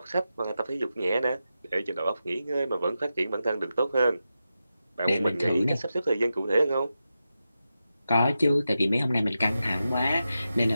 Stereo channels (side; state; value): both; inverted; correlation -0.90